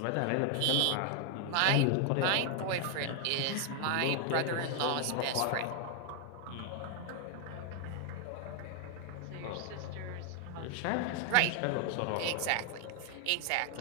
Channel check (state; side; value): different; both; correlation 0.00